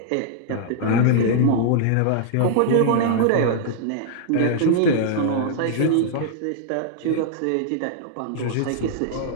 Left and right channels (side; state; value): both; different; correlation -0.01